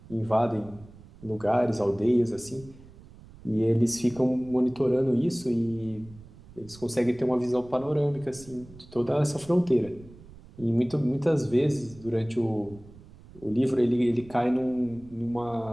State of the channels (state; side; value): noise; right; rumble, 21 dB below the sound